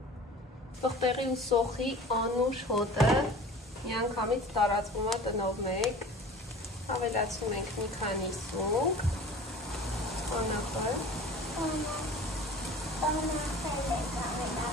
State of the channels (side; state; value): both; normal; correlation 0.41